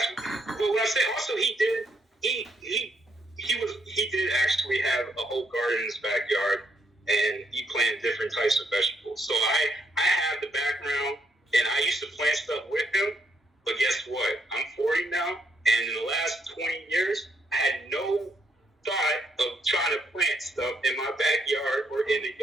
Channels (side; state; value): both; normal; correlation 0.75